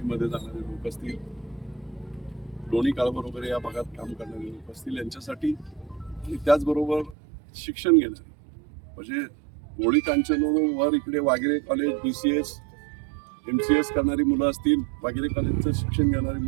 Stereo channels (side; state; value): left; drops out; at 7.2 s